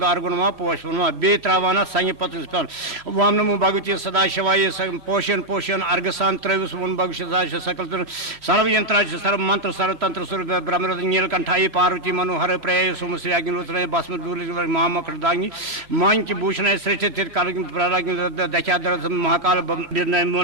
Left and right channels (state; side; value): late; left; 3.0 ms